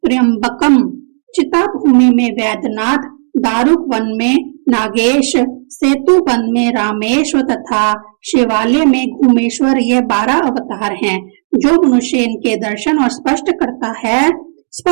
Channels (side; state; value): left; silent; digital silence